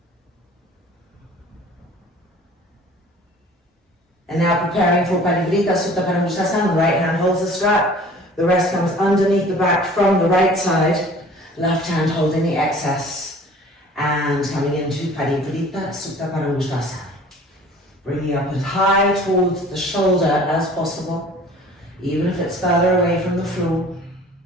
And now preparing for Parivrita Sutta Paramudasana. Right hand holds the strap. The rest comes underneath the back from the right side. Left hand holding the excess. And coming into Parivrita Sutta Paramudasana. Bringing up as high towards the shoulder as possible, even if it's further away from the floor.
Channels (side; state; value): both; normal; correlation 0.48